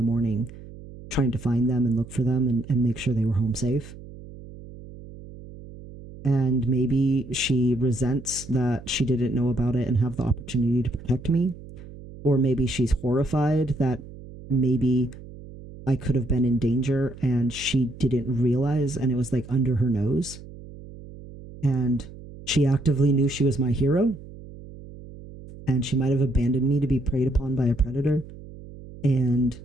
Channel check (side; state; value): right; noise; hum, 16 dB below the sound